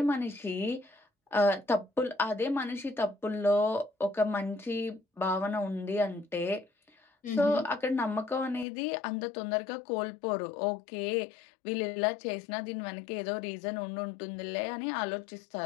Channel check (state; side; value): drops out; right; at 8.7 s